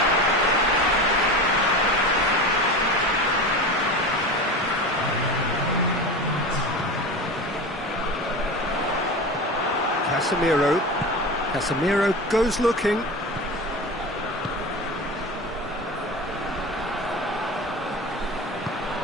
Casemiro goes looking.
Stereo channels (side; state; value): both; normal; correlation 0.29